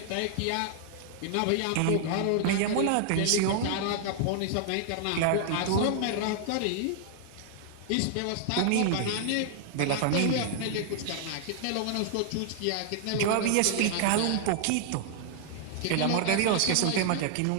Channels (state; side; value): different; both; correlation -0.01